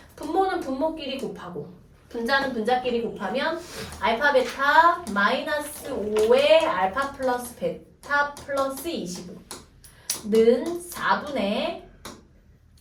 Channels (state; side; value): identical; both; correlation 1.00